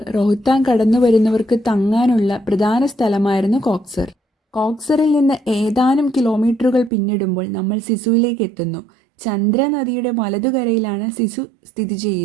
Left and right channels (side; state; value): left; drops out; at 6.9 s